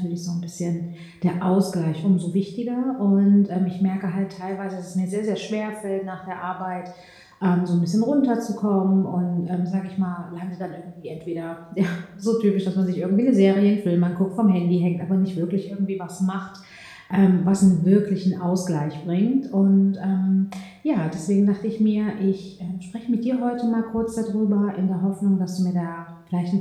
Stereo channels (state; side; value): identical; both; correlation 1.00